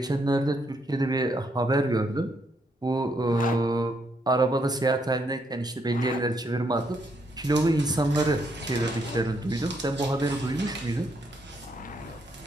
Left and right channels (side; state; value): both; normal; correlation 0.75